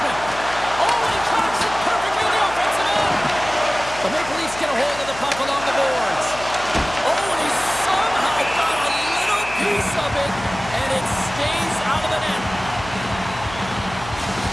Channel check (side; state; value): left; noise; hum, 14 dB below the sound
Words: Oh, he tracks it perfectly in the offensive end. The Maple Leafs get a hold of the puck along the boards. Oh, and he somehow got a little piece of it, and it stays out of the net.